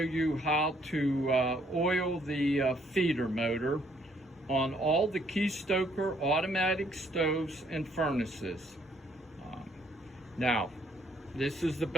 how to oil the feeder motor on all the Keystoker automatic stoves and furnaces. Now, this is the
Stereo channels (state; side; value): normal; both; correlation 0.66